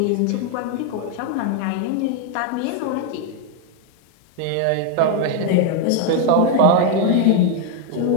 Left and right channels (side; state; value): both; different; correlation 0.01